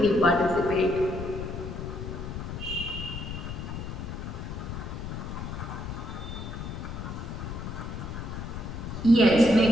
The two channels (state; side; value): noise; left; rumble, 7 dB below the sound